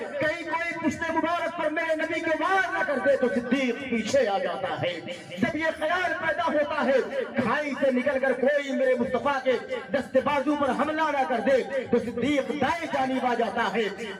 کہیں کوئی پشت مبارک پر میرے نبی کے وار نہ کر دے تو صدیق پیچھے آ جاتا ہے. جب یہ خیال پیدا ہوتا ہے کھائی سے نکل کر کوئی میرے مصطفیٰ کے دست بازو پر حملہ نہ کر دے تو صدیق دائیں جانب آ جاتا ہے.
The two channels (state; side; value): identical; both; correlation 1.00